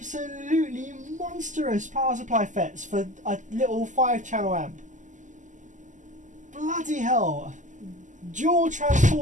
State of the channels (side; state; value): left; late; 0.37 ms